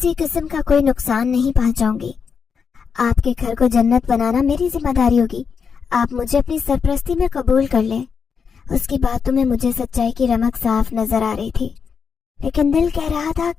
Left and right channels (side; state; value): right; quieter; 6.1 dB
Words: قسم کا کوئی نقصان نہیں پہنچاؤں گی۔ آپ کے گھر کو جنت بنانا میری ذمہ داری ہوگی۔ آپ مجھے اپنی سرپرستی میں قبول کر لیں۔ اس کی باتوں میں مجھے سچائی کی رمق صاف نظر آ رہی تھی، لیکن دل کہہ رہا تھا